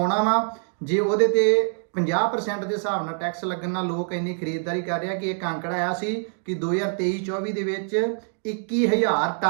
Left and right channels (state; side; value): silent; left; 62 dB below the other